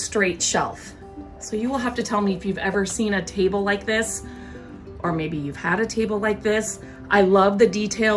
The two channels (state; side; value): identical; both; correlation 1.00